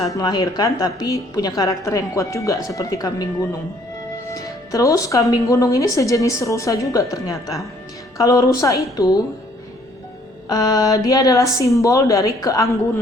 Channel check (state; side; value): normal; both; correlation 0.62